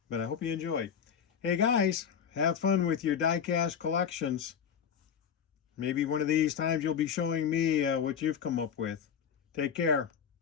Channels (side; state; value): right; quieter; 7.7 dB